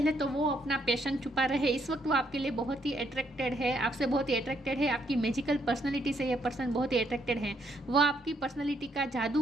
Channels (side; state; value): both; normal; correlation 0.73